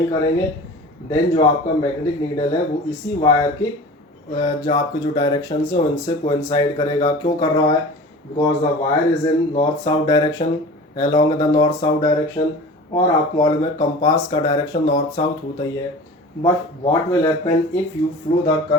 करेंगे, देन जो आपका मैग्नेटिक नीडल है वो इसी वायर के जो आपके जो डायरेक्शन है उनसे कोइंसाइड करेगा। क्यों कर रहा है? Because the wire is in north south direction, along the north south direction. और आपको मालूम है कंपास का डायरेक्शन नॉर्थ साउथ होता ही है। But what will happen if you flow the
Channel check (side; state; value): both; normal; correlation 0.38